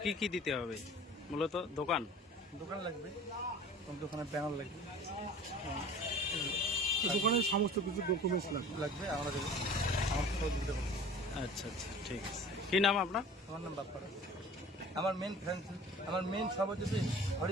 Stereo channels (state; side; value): normal; both; correlation 0.43